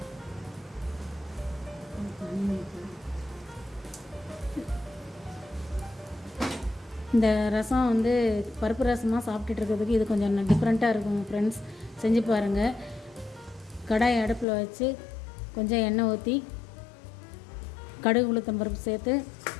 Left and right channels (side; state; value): right; drops out; at 14.5 s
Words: இந்த ரசம் பருப்பு ரசமாக சாப்பிட்டுட்டு இருக்கிறதுக்கு இது கொஞ்சம் டிஃப்ரெண்ட்டாக இருக்கும் ஃப்ரெண்ட்ஸ், செஞ்சு பாருங்கள். கடாய் அடுப்பில் வச்சு கொஞ்சம் எண்ணெய் ஊற்றி கடுகு உளுத்தம்பருப்பு சேர்த்து